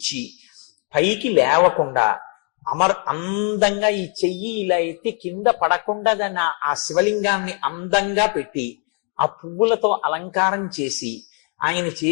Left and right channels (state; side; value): quieter; right; 36.1 dB